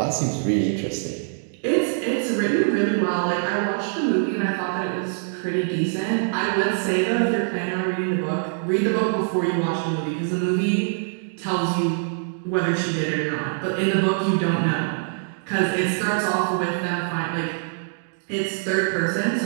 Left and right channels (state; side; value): silent; left; digital silence